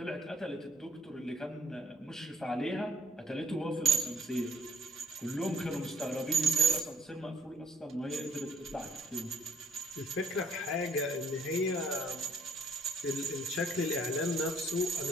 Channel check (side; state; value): both; normal; correlation 0.63